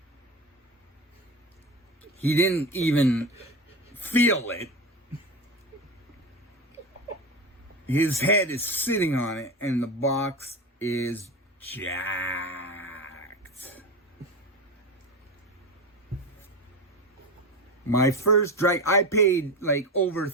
He didn't even feel it. His head is sitting on it, and the box is jacked. My first I paid like over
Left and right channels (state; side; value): normal; both; correlation 0.22